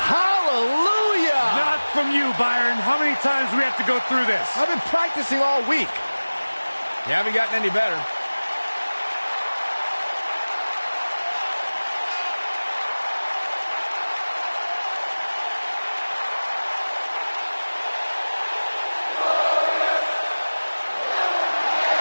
Not from you, Byron. How many times do we have to go through this? I've been practicing all week. You haven't gotten any better.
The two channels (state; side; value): inverted; both; correlation -1.00